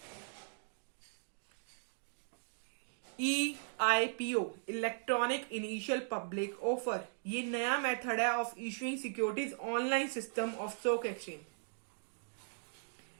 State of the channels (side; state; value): left; silent; digital silence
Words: EIPO, electronic initial public offer, ये नया method है of issuing securities online system of stock exchange.